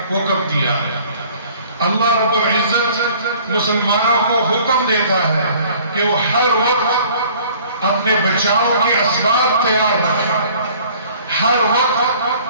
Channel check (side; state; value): both; inverted; correlation -0.53